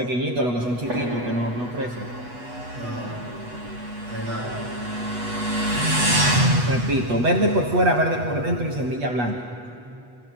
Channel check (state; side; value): late; left; 8.2 ms